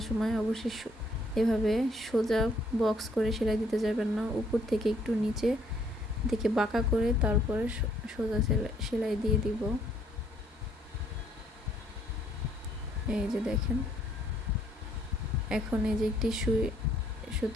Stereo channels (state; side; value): normal; both; correlation 0.66